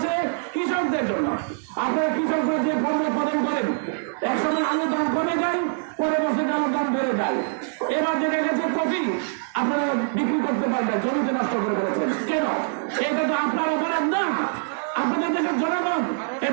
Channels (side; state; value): left; silent; 55 dB below the other